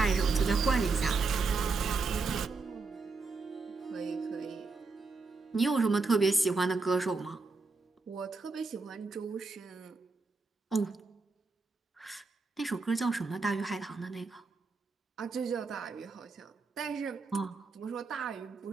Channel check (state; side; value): quieter; left; 4.0 dB